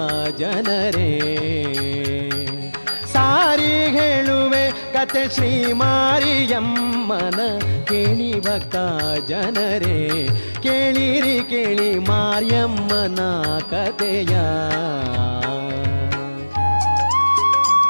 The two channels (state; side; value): inverted; both; correlation -1.00